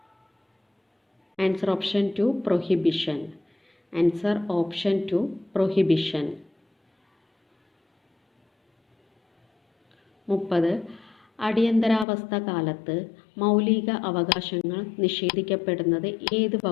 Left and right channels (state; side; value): drops out; right; at 12.1 s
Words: Answer option 2 prohibition. Answer option 2 prohibition. 30. അടിയന്തരാവസ്ഥ കാലത്ത് മൗലിക അവകാശങ്ങൾ നിഷേധിക്കപ്പെടുന്നത് ഏത്